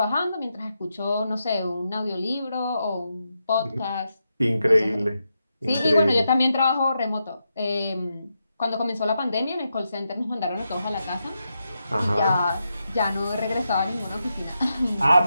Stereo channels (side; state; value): both; inverted; correlation -0.85